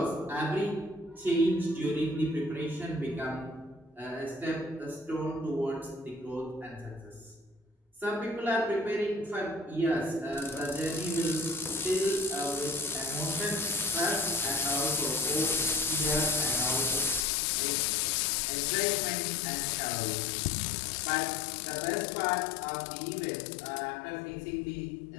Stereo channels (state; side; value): drops out; right; at 17.2 s